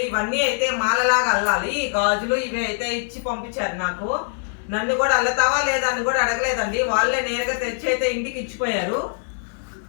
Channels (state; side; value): silent; right; digital silence